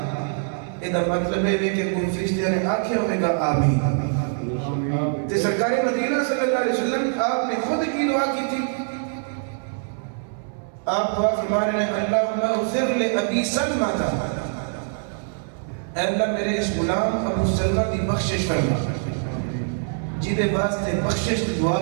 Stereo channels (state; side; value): silent; left; 63 dB below the other